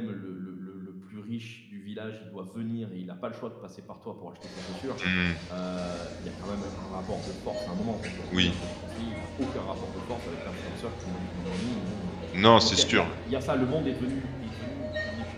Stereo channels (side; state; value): both; identical; correlation 1.00